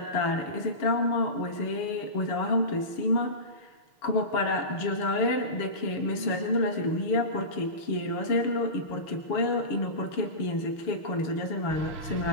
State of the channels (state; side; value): late; right; 6.5 ms